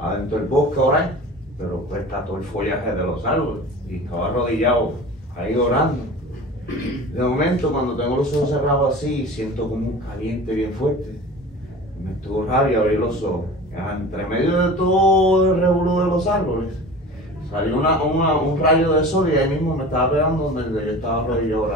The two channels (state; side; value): normal; both; correlation 0.37